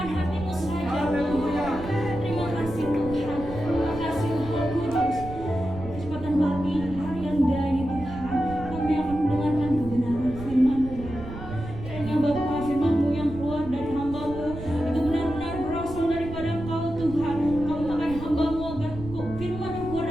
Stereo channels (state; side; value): noise; right; rumble, 11 dB below the sound